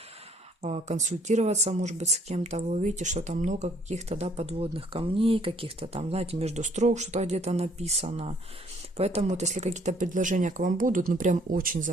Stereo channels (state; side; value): normal; both; correlation 0.62